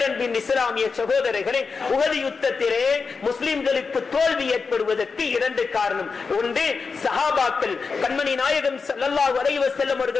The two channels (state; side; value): quieter; right; 4.9 dB